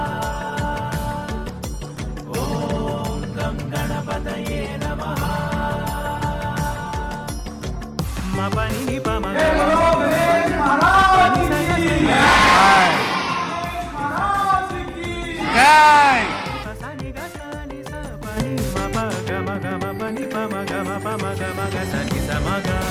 ఓం గం గణపతయే నమః. మపని పమ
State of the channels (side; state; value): both; identical; correlation 1.00